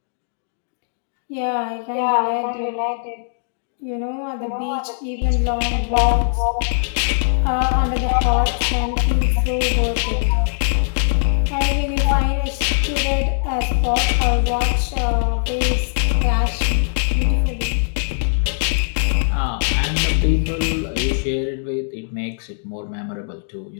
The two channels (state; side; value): silent; right; digital silence